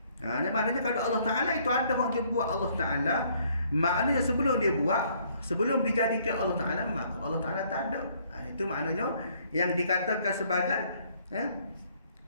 Maknanya kalau Allah Ta'ala itu ada orang jumpa Allah Ta'ala, maknanya sebelum dia buat, sebelum dijadikan Allah Ta'ala, maka Allah Ta'ala tak ada. Itu maknanya yang dikatakan sebagai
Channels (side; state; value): both; inverted; correlation -0.64